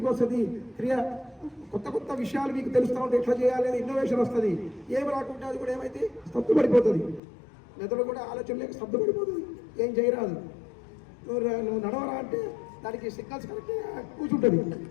వస్తుంది, కొత్త విషయాలు మీకు తెలుస్తూ ఉంటే ఎట్లా చేయాలి అని ఇన్నోవేషన్ వస్తుంది. ఏమి రాకుంటే అది కూడా ఏమైతే స్తబ్దుపడిపోతుంది. మెదడు కూడా ఆలోచనలేక స్తబ్దుపడిపోతుంది, ఏం చేయరాదు. నువ్వు నడవరా అంటే దానికి సిగ్నల్స్ కరెక్ట్గా కూర్చుంటుంది.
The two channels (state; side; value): drops out; right; at 7.2 s